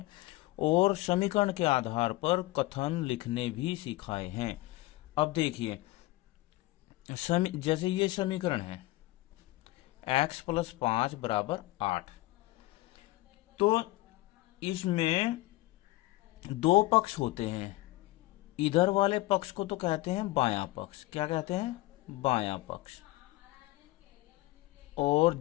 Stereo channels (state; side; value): quieter; right; 19.1 dB